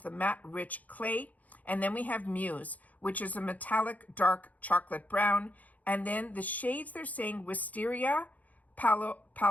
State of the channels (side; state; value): right; late; 0.076 ms